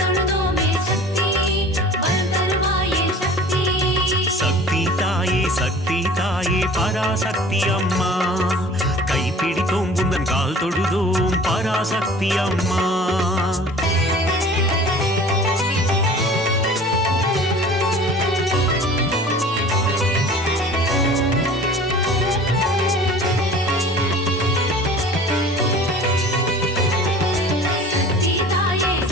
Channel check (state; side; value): normal; both; correlation 0.44